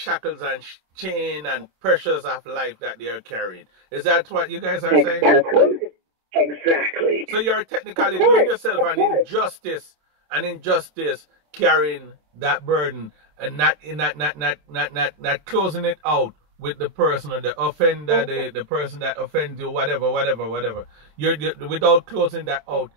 and chain and pressures of life that they are carrying. Is that what you guys are saying? Exactly. So you're technically doing yourself an injustice, carrying that burden and not closing it out with the person or the offender, the person that offends you, whatever. You're without closing that out,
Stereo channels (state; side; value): late; left; 27 ms